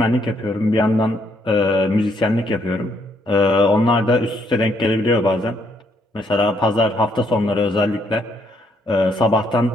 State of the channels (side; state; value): both; normal; correlation 0.71